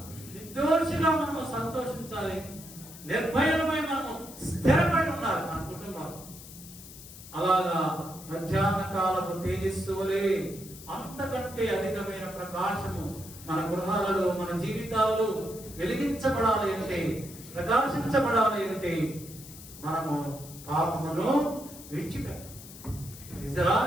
మనము సంతోషించాలి, నిర్భయులమై మనము స్థిరపడి ఉండాలి మన కుటుంబాలు. అలాగా మధ్యాహ్న కాలపు తేజస్సు వలె అంతకంటే అధికమైన ప్రకాశము మన గృహాలలో, మన జీవితాలలో వెలిగించబడాలి అంటే, ప్రకాశించబడాలి అంటే మనము పాపమును విడిచిపెట్టాలి.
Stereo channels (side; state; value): left; noise; hiss, 16 dB below the sound